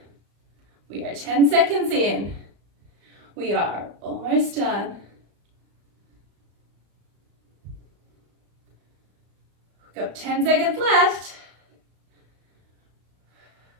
We are 10 seconds in. We are almost done. We've got 10 seconds left.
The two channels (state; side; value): late; left; 35 ms